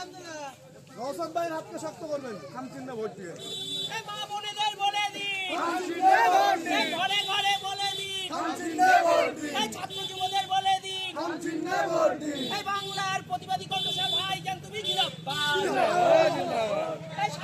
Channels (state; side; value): identical; both; correlation 1.00